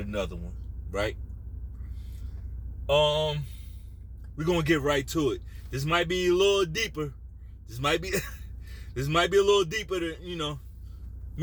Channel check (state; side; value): identical; both; correlation 1.00